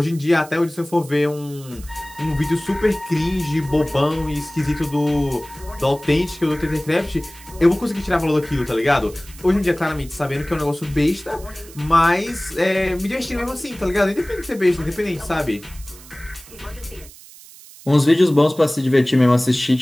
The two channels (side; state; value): right; noise; hiss, 20 dB below the sound